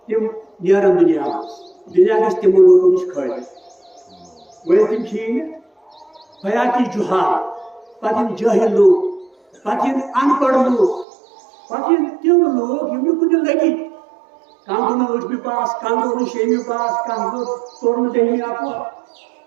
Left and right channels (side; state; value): left; drops out; at 11.1 s